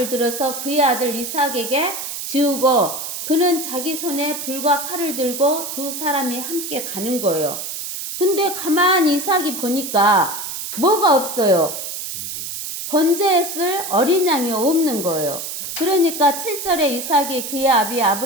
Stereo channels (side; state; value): right; noise; hiss, 6 dB below the sound